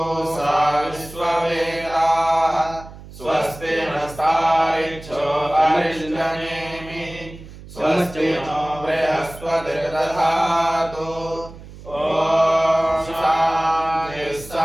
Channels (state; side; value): noise; right; hum, 17 dB below the sound